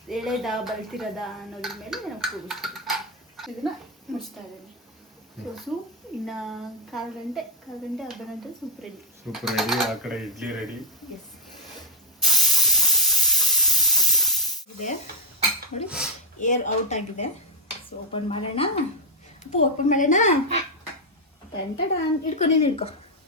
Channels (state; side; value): normal; both; correlation 0.00